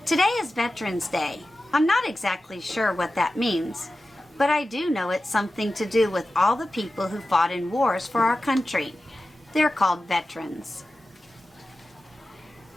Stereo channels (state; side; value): normal; both; correlation 0.94